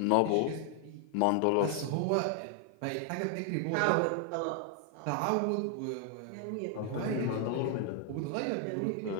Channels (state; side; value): different; both; correlation 0.00